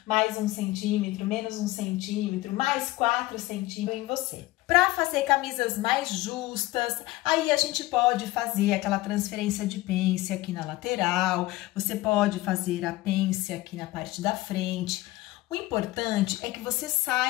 mais 1 centímetro, menos 1 centímetro, mais 4 centímetros em você. Para fazer camisas mais justas, aí a gente pode fazer aquela transferência de pence aqui na lateral, você pode fazer a pence aqui na parte da frente. O importante é que você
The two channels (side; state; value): right; quieter; 18.2 dB